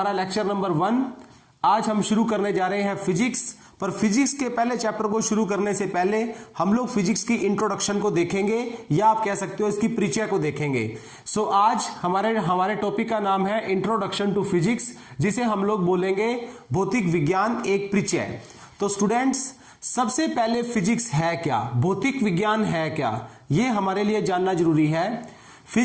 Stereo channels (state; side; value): identical; both; correlation 1.00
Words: लेक्चर नंबर 1। आज हम शुरू करने जा रहे हैं फिजिक्स। पर फिजिक्स के पहले चैप्टर को शुरू करने से पहले हम लोग फिजिक्स की इंट्रोडक्शन को देखेंगे, या आप कह सकते हो इसकी परिचय को देखेंगे। सो आज हमारे टॉपिक का नाम है इंट्रोडक्शन टू फिजिक्स, जिसे हम लोग बोलेंगे भौतिक विज्ञान एक परिचय। तो स्टूडेंट्स, सबसे पहले फिजिक्स है क्या, भौतिक विज्ञान है क्या, यह हमारे लिए जानना जरूरी है।